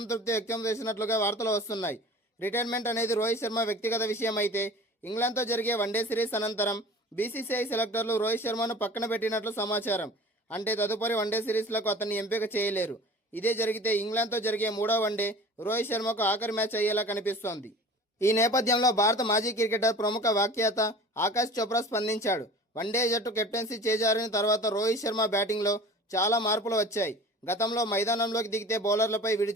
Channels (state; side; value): normal; both; correlation 0.41